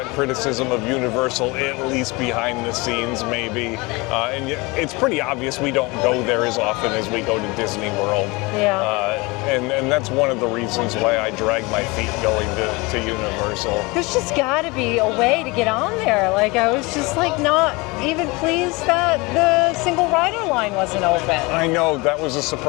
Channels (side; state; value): right; quieter; 25.1 dB